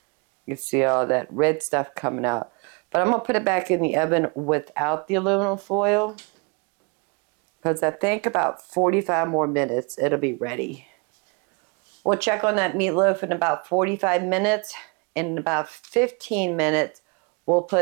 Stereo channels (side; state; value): left; quieter; 31.8 dB